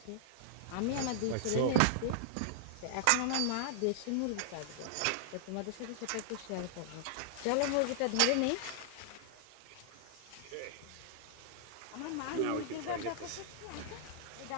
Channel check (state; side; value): different; both; correlation -0.01